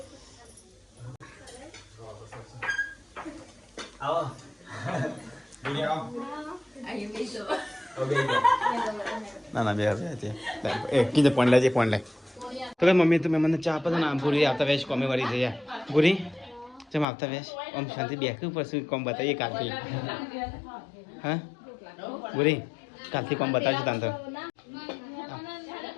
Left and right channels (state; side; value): drops out; right; at 17.1 s